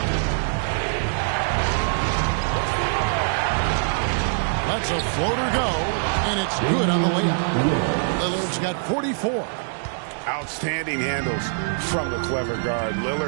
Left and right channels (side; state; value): left; silent; 59 dB below the other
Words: Lets a floater go, and it's good on the layup. Lillard's got 44. Outstanding handles from the clever guard.